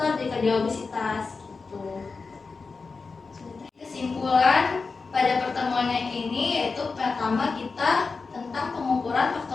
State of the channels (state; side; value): quieter; right; 4.4 dB